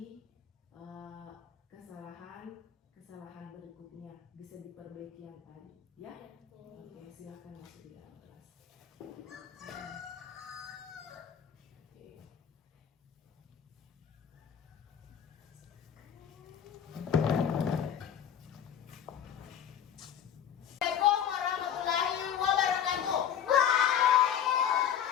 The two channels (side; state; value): right; quieter; 9.1 dB